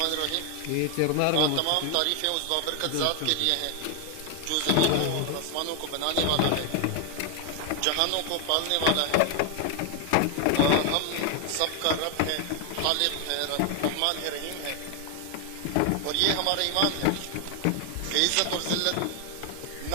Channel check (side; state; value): both; different; correlation 0.01